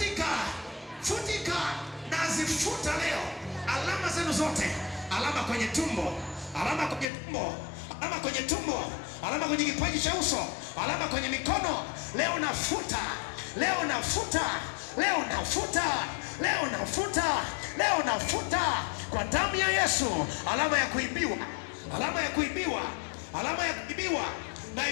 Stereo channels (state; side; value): drops out; right; at 7.1 s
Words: futika, nazifuta leo alama zenu zote, alama kwenye tumbo, alama kwenye tumbo, alama kwenye tumbo, alama kwenye kipaji cha uso, alama kwenye mikono, leo nafuta, leo nafuta, leo nafuta, leo nafuta, leo nafuta kwa damu ya Yesu. Alama ya kuibiwa, alama ya kuibiwa, alama ya kuibiwa,